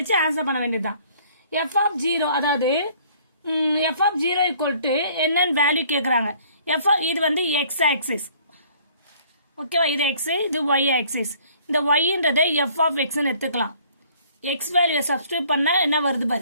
ஆன்சர் பண்ண வேண்டியதுதான். f of 0 அதாவது f of 0 equal to என்னன்னு வேல்யூ கேக்குறாங்க. இது வந்து x ஆக்சிஸ். ஓகேவா? இது x, இது y ஆக்சிஸ். இந்த y-ன்றதை f of x ன்னு எடுத்துக்கலாம். x வேல்யூ சப்ஸ்டிட்யூட் பண்ணா என்ன வருது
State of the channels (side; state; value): both; inverted; correlation -0.57